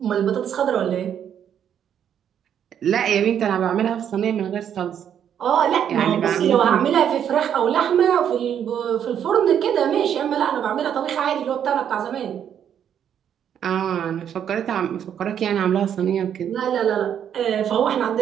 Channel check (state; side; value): quieter; left; 9.1 dB